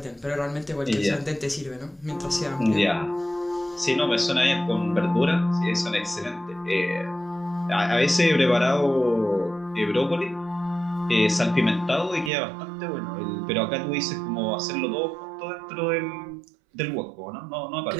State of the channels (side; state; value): left; drops out; at 12.3 s